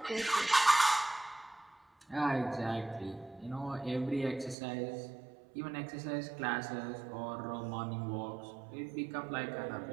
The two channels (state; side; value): drops out; left; at 4.5 s